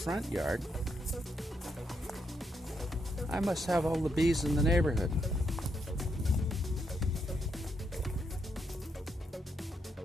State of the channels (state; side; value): normal; both; correlation 0.79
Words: yard, I must have all the bees in the neighborhood.